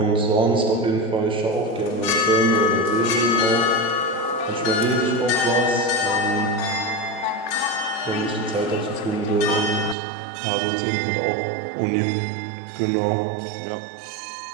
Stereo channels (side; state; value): left; drops out; at 10.0 s